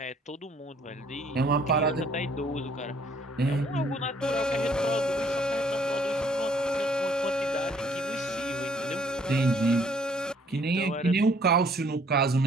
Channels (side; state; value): both; normal; correlation 0.62